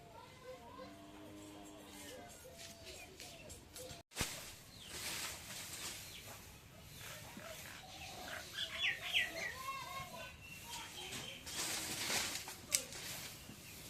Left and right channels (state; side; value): identical; both; correlation 1.00